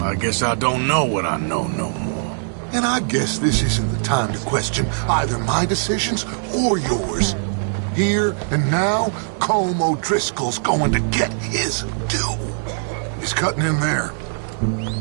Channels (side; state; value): left; silent; digital silence